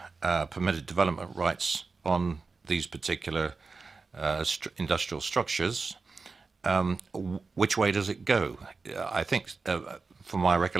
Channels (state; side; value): quieter; left; 4.3 dB